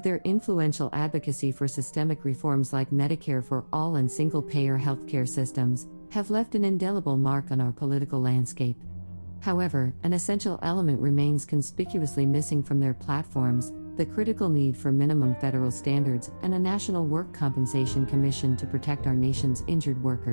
their influential advocacy for systemic reforms like Medicare for all and single-payer healthcare systems, have left an indelible mark on our political landscape. However, an essential element remains conspicuously missing from their platforms: the critical need for minimum federal standards and a National Work Compensation Commission to protect our nation's injured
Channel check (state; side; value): inverted; both; correlation -1.00